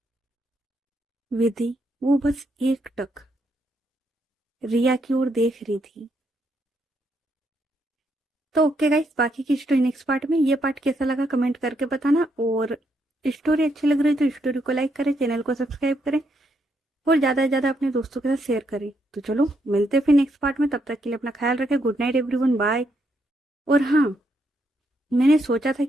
विधि वो बस एक टक रिया की ओर देख रही थी। तो ओके गाइस, बाकी की स्टोरी नेक्स्ट पार्ट में। ये पार्ट कैसा लगा कमेंट करके बताना। और स्टोरी अच्छी लग रही है तो स्टोरी को लाइक करें, चैनल को सब्सक्राइब करें और ज़्यादा से ज़्यादा अपने दोस्तों के साथ शेयर करें। तो चलो मिलते हैं फिर नेक्स्ट पार्ट में। तब तक के लिए अपना ख्याल रखें। Good night everyone, bye. और हाँ, मैंने सोचा था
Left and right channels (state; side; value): normal; both; correlation 0.77